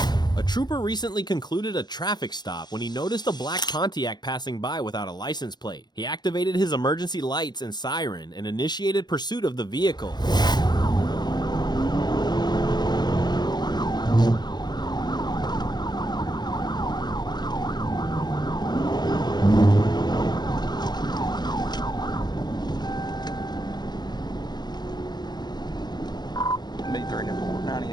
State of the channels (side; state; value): right; late; 0.21 ms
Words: A trooper recently concluded a traffic stop when he noticed a black Pontiac passing by without a license plate. He activated his emergency lights and siren and initiated pursuit of the vehicle. B3